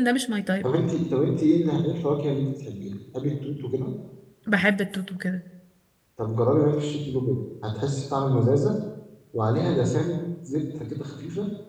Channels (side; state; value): both; identical; correlation 1.00